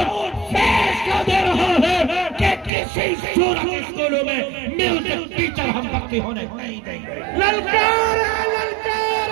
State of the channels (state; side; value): drops out; left; at 2.7 s